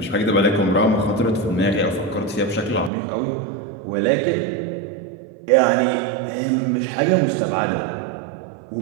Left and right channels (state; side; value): drops out; left; at 2.9 s